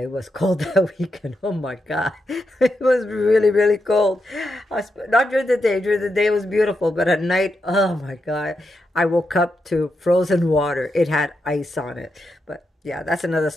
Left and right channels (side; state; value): both; normal; correlation 0.85